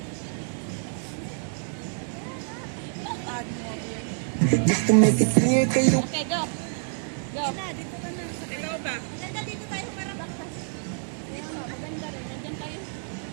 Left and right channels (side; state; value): left; silent; 60 dB below the other